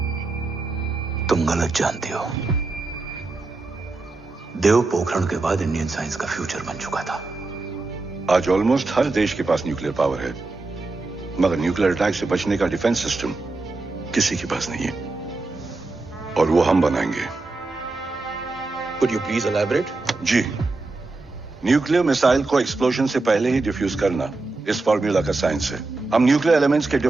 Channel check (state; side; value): quieter; left; 3.4 dB